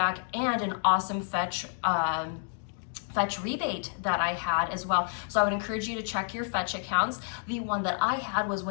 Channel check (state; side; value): silent; right; digital silence